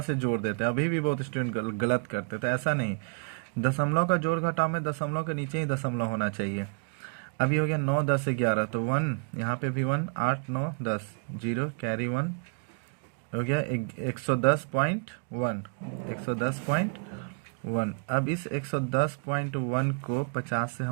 से जोड़ देते हैं, अभी भी बहुत स्टूडेंट गलत करते हैं, तो ऐसा नहीं, दशमलव का जोड़ घटाव में दशमलव के नीचे ही दशमलव होना चाहिए। अभी हो गया 9 10 11 तो 1, यहाँ पे भी 1, 8 9 10 0 कैरी 1 हो गया 110.1, 110.1। अब इस 110.1 को 50 से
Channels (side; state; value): left; quieter; 36.1 dB